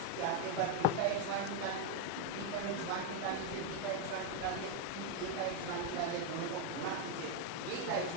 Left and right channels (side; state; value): both; different; correlation 0.01